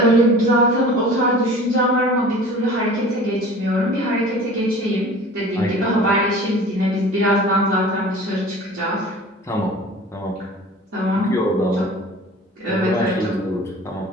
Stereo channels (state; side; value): normal; both; correlation 0.42